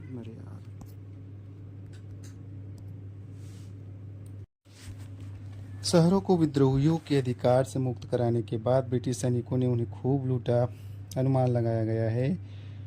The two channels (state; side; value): identical; both; correlation 1.00